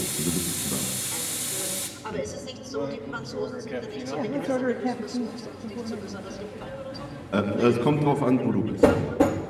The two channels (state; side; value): identical; both; correlation 1.00